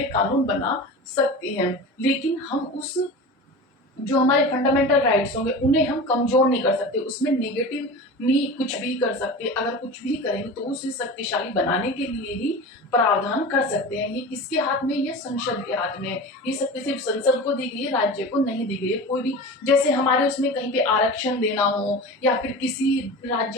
कानून बना सकती है, लेकिन हम उस जो हमारे फंडामेंटल राइट्स होंगे उन्हें हम कमजोर नहीं कर सकते, उसमें नेगेटिव नहीं कुछ भी कर सकते। अगर कुछ भी करेंगे तो उसे शक्तिशाली बनाने के लिए ही प्रावधान कर सकते हैं। ये किसके हाथ में, ये संसद के हाथ में है। ये शक्ति सिर्फ संसद को दी गई है, राज्य को नहीं दी गई है। कोई भी, जैसे हमारे उसमें कहीं पे आरक्षण देना हो या फिर किसी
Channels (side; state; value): both; normal; correlation 0.32